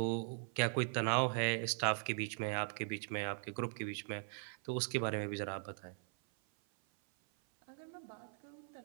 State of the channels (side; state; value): left; silent; 51 dB below the other